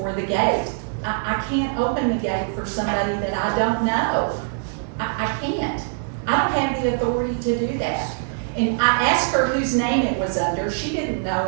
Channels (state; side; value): silent; left; 64 dB below the other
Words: the gate. I can't open the gate for somebody that I don't know. I can't. I don't have the authority to do that. And I asked her whose name it was under. She didn't know